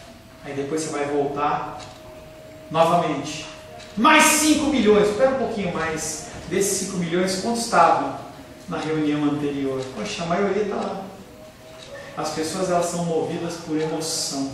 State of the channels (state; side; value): identical; both; correlation 1.00